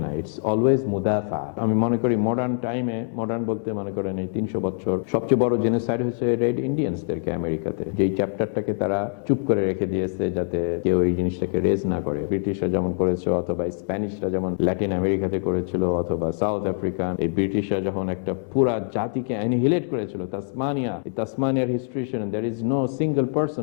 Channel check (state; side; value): silent; right; digital silence